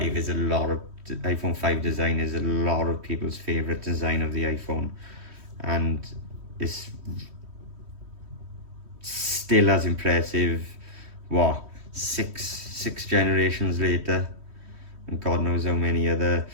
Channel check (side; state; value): left; late; 3.1 ms